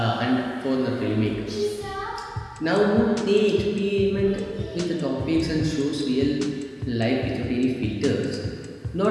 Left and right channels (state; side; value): identical; both; correlation 1.00